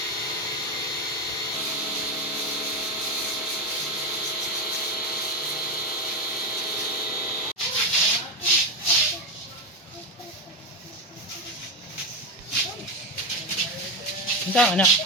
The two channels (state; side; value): normal; both; correlation 0.13